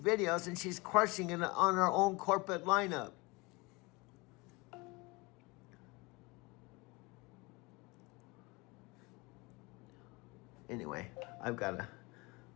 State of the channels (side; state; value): right; quieter; 25.4 dB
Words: and she's crushing it on her own corporate lineup." Anyway, I've got